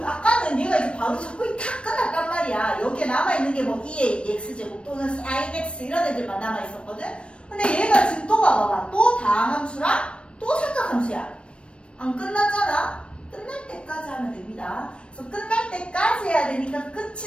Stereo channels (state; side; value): late; right; 0.058 ms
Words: 아까는 얘가 이제 바로 적분이 탁 끝났단 말이야. 여기에 남아있는 게 뭐 2의 x제곱 또는 sin x 이런 애들만 남아있었거든? 근데 얘가 지금 또 봐봐봐. 또 다함수랑 또 삼각함수야. 안 끝났잖아. 끝날 때까지 하면 됩니다. 그래서 끝날 때까지 해야 되니까